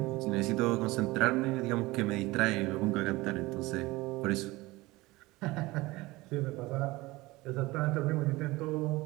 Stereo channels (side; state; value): left; quieter; 20.6 dB